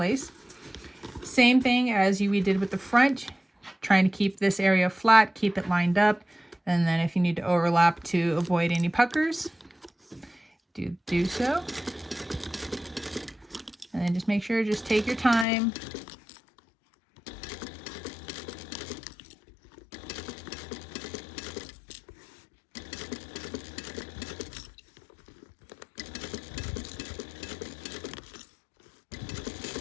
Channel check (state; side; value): drops out; right; at 15.5 s